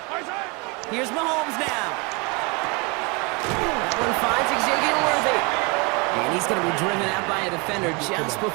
Here's Mahomes now. That one finds Xavier Worthy. And he's going to be driven out by a defender just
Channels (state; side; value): quieter; left; 29.8 dB